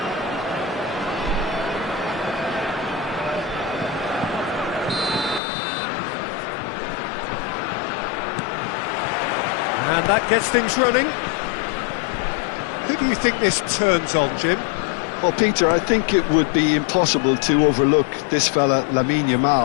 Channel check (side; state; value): right; drops out; at 5.4 s